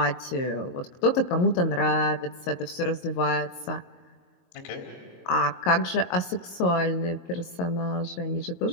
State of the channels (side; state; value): right; late; 22 ms